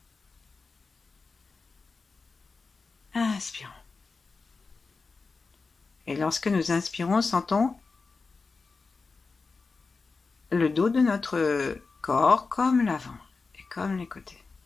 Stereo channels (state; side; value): quieter; right; 4.3 dB